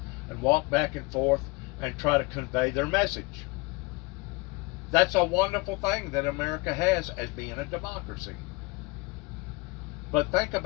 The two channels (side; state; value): right; quieter; 25.1 dB